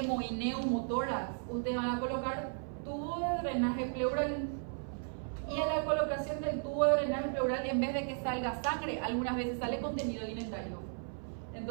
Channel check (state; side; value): silent; left; 54 dB below the other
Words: y neumotórax, ustedes van a colocar tubo de drenaje pleural, y en la colocación del tubo de drenaje pleural, en vez de que salga sangre, algunas veces sale contenido alimentario.